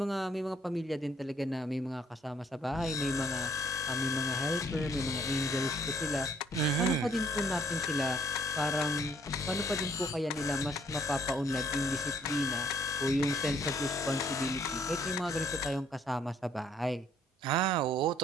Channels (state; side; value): normal; both; correlation 0.64